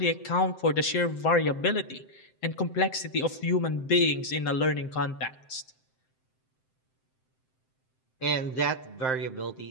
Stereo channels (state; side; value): late; right; 7.7 ms